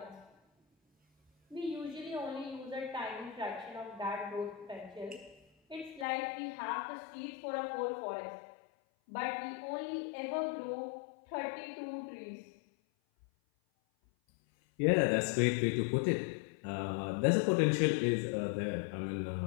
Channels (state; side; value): drops out; right; at 6.1 s